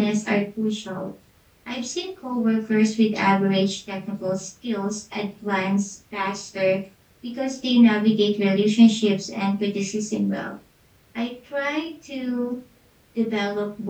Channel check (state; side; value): identical; both; correlation 1.00